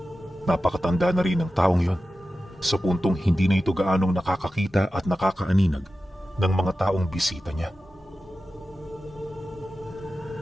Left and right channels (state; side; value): normal; both; correlation 0.93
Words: Napakatanda na rin ang taong yon sa puntong hindi na ito gaanong nakakakita at nakakaaninag ng mga taong bisita niya.